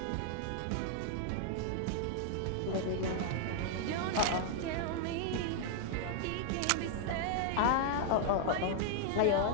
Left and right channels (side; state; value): both; different; correlation 0.00